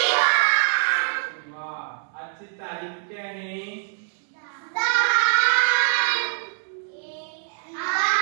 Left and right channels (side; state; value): left; silent; 61 dB below the other